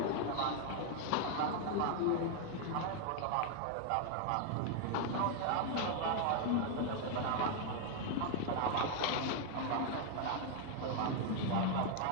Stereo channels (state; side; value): different; both; correlation 0.00